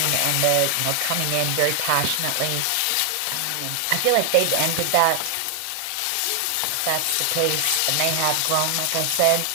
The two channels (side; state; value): both; different; correlation 0.00